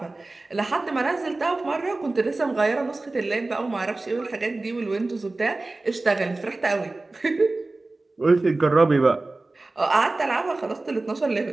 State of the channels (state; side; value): quieter; left; 3.2 dB